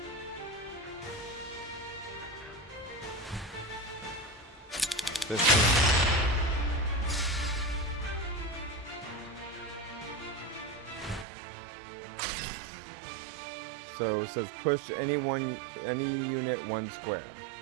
15. So it says push any unit 1 square.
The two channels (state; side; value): drops out; left; at 11.2 s